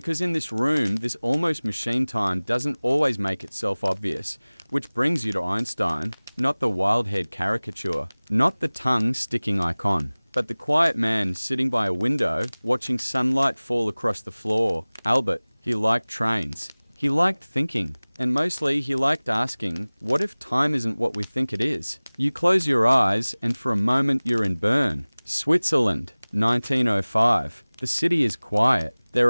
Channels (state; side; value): inverted; both; correlation -1.00